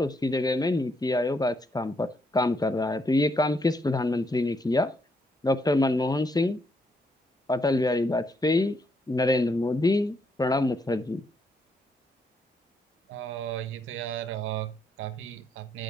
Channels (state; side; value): normal; both; correlation 0.75